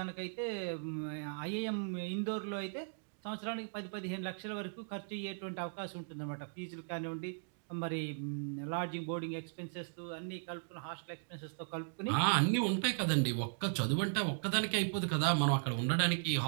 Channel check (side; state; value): left; silent; digital silence